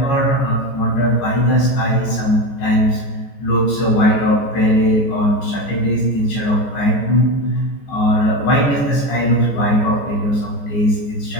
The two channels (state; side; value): late; right; 14 ms